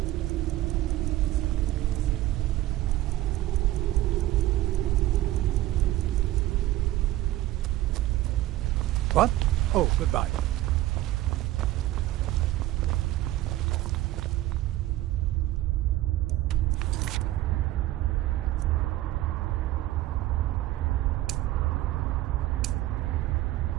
What? Oh, goodbye.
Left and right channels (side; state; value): left; quieter; 15.4 dB